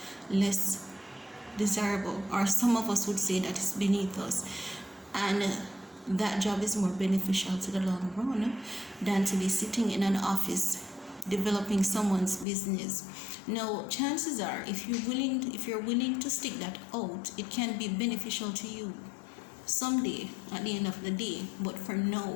less desirable, or some of us would say that is beneath us, and that job is more beneficial to the long run than to be sitting in an office developing someone's business. Now, chances are, if you're willing to stick that out, it can be beneficial to you someday at the end of the day. But for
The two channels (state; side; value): drops out; right; at 12.5 s